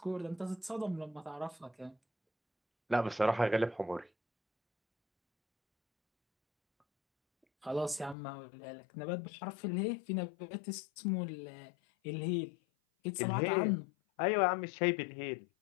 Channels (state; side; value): drops out; right; at 8.2 s